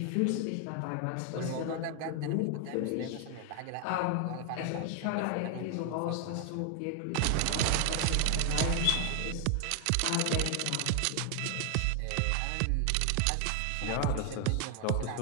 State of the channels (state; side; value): different; both; correlation 0.00